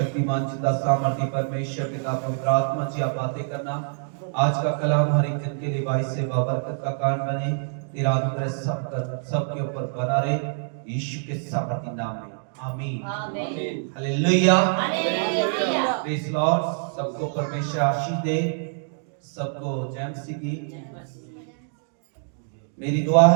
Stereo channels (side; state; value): left; silent; digital silence